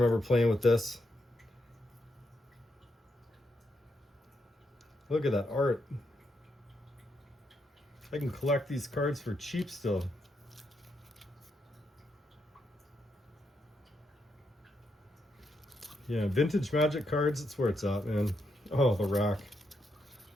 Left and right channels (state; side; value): normal; both; correlation 0.80